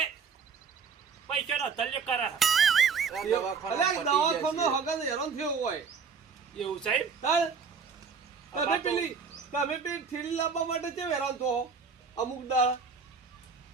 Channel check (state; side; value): quieter; left; 5.6 dB